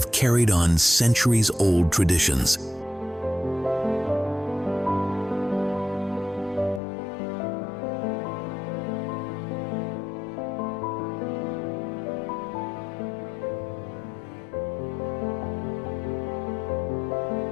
carried on centuries-old traditions.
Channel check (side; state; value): right; drops out; at 6.8 s